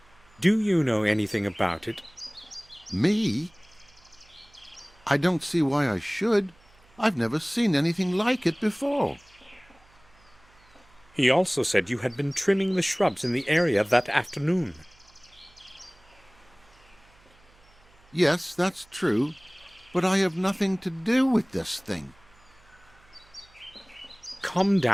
Do you know anything about it? Me? I don't see why I should. I've never seen anything like it before. He also said you had been trimming the shrubs in the area that afternoon. Yes, that's true, but I have nothing to do with this thing. Calm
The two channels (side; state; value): right; noise; hum, 29 dB below the sound